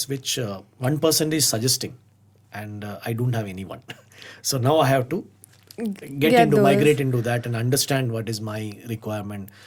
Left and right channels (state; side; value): identical; both; correlation 1.00